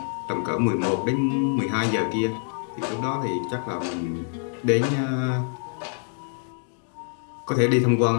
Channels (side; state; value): right; silent; 58 dB below the other